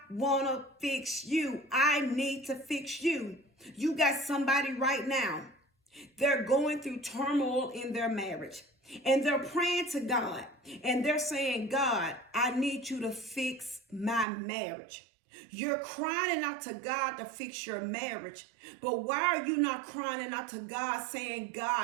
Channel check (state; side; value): drops out; left; at 14.2 s